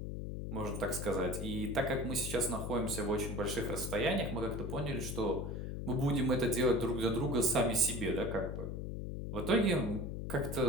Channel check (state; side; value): noise; left; hum, 5 dB below the sound